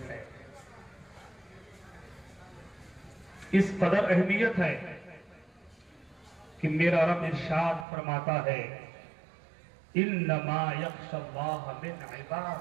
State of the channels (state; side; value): drops out; left; at 7.9 s